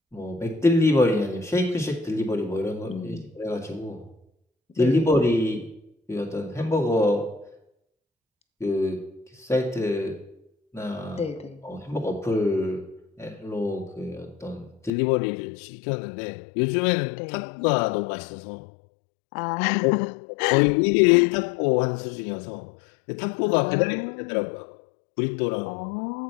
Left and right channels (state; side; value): drops out; right; at 14.9 s